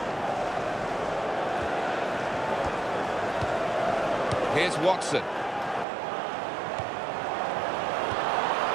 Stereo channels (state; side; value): drops out; left; at 5.9 s